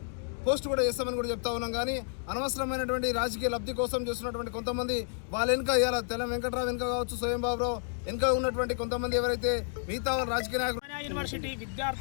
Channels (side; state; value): right; silent; 57 dB below the other